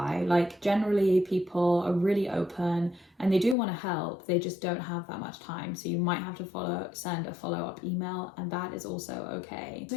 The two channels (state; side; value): drops out; right; at 3.6 s